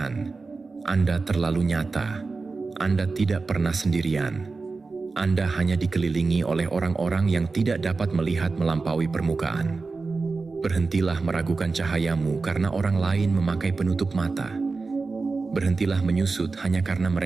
Anda terlalu nyata. Anda tidak pernah sendirian. Anda hanya dikelilingi oleh orang-orang yang tidak dapat melihat melampaui permukaan. Berhentilah meragukan cahayamu karena orang lain memakai penutup mata. Berhentilah menyusut hanya karena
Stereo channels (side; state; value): left; quieter; 4.1 dB